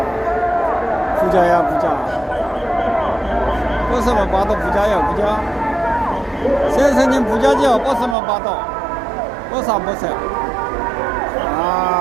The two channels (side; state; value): left; drops out; at 8.2 s